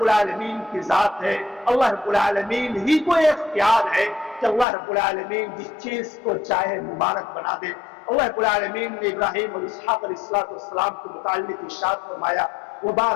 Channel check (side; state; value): right; drops out; at 4.7 s